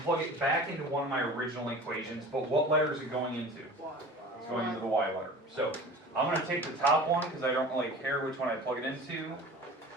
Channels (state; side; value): normal; both; correlation 0.39